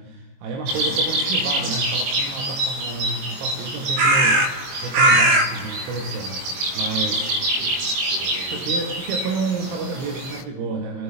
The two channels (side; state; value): left; late; 22 ms